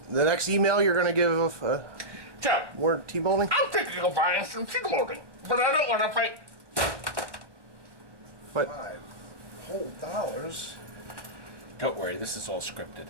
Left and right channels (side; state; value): left; late; 1.1 ms